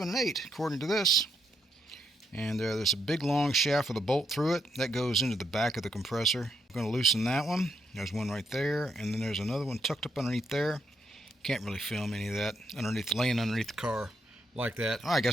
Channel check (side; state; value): both; normal; correlation 0.77